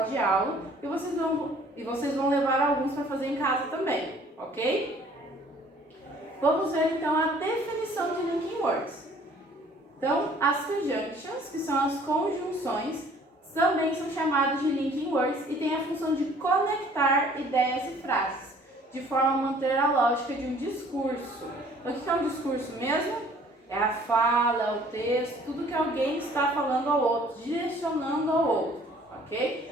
de aula e vocês vão levar alguns para fazer em casa também, ok? Vamos ver então a definição de linking words. Então, as conjunctions, que são as conjunções, também são chamadas de linking words e têm a função de conectar ideias e frases, de forma a manter a lógica de um discurso. Então, o que é um discurso mesmo? É a fala, é o texto, tudo que alguém está falando ao outro, direcionando ao outro, ok?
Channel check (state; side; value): normal; both; correlation 0.55